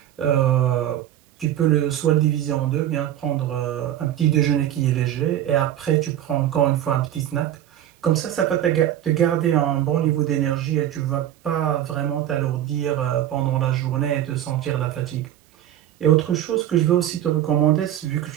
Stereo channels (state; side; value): quieter; left; 11.7 dB